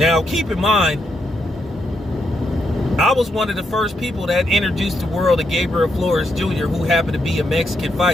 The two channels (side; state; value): both; normal; correlation 0.80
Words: keep in mind, I was one of the first people that introduced the world to Gabriel Flores Jr., who happened to be a Mexican